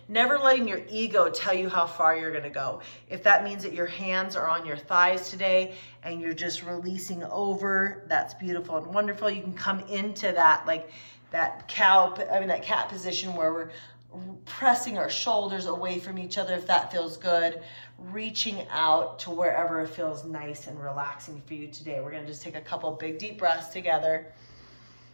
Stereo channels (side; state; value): both; inverted; correlation -1.00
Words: never letting your ego tell you how far you're gonna go. If that means that your hands are on your thighs today, and you're just releasing over, that's beautiful and wonderful. You can come into that, like that cat position where we're pressing our shoulders away from each other if that feels good, reaching out to wherever it feels nice and relaxing for you today. We're gonna just take a couple big deep breaths together.